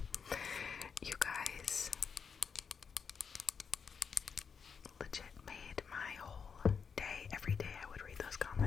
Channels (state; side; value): quieter; right; 6.2 dB